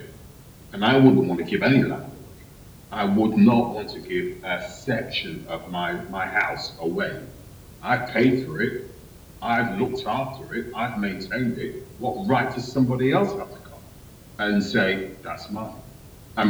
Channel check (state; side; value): identical; both; correlation 1.00